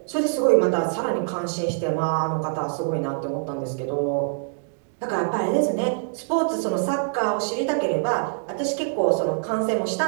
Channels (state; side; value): silent; left; 62 dB below the other